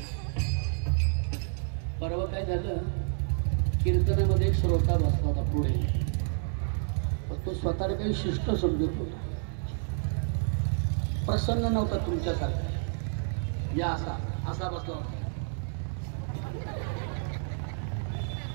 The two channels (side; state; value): left; silent; 58 dB below the other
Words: परवा काय झालं, कीर्तनामध्ये एक श्रोता बसला होता पुढे. तो स्वतःला काही शिष्ट समजत होता, प्रसन्न नव्हता तुमच्यासारखा. या असा असा बसला होता.